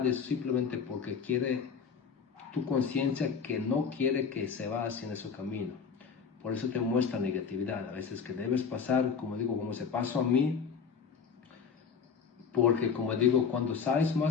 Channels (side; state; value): right; quieter; 6.2 dB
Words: es simplemente porque quiere tu conciencia que no quiere que se vaya hacia ese camino. Por eso te muestra negatividad, a veces que debes pasar, como digo, como se pasó a mí, porque como digo, cuando sabes